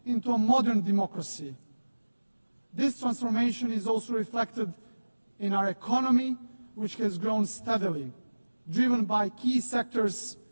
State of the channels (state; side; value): inverted; both; correlation -1.00